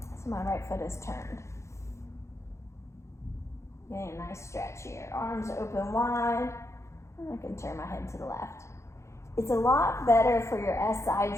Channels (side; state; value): right; late; 0.14 ms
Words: So my right foot is turned. Getting a nice stretch here. Arms open wide. And I can turn my head to the left. It's a lot better for your SI